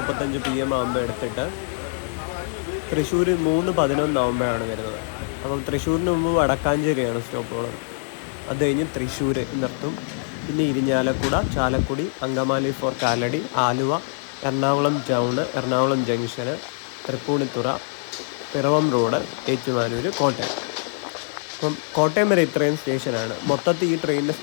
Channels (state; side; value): silent; right; digital silence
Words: PM ആകുമ്പോൾ എടുത്തിട്ട് തൃശ്ശൂർ 3:11 ആകുമ്പോഴാണ് വരുന്നത്. അപ്പം തൃശ്ശൂരിന് മുമ്പ് വടക്കാഞ്ചേരിയാണ് സ്റ്റോപ്പുള്ളത്. അത് കഴിഞ്ഞ് തൃശ്ശൂർ നിർത്തും. പിന്നെ Irinjalakuda, Chalakudy, Angamaly for Kalady, Aluva, Ernakulam town, Ernakulam junction, Tripunithura, Piravom road, Ettumanoor, Kottayam. അപ്പം കോട്ടയം വരെ ഇത്രയും സ്റ്റേഷനാണ്. മൊത്തത്തിൽ ഈ ട്രെയിനിൻ്റെ